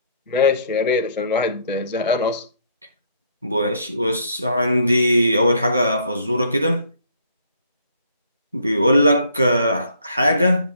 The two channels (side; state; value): both; inverted; correlation -0.63